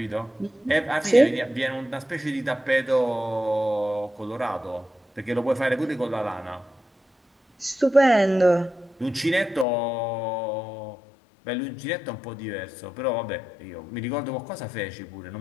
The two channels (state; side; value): drops out; right; at 9.7 s